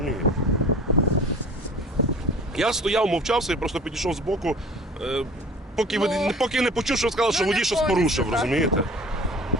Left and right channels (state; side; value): normal; both; correlation 0.43